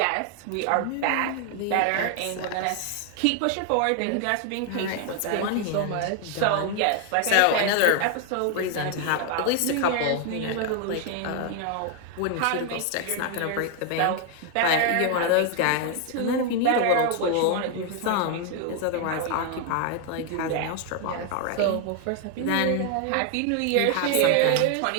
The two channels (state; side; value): different; both; correlation 0.00